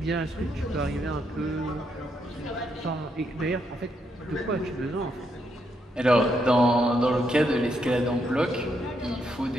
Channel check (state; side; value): normal; both; correlation 0.78